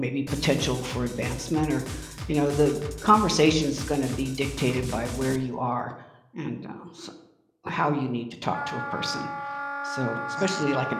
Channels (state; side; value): identical; both; correlation 1.00